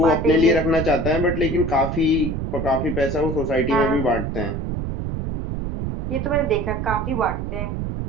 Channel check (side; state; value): right; noise; rumble, 3 dB below the sound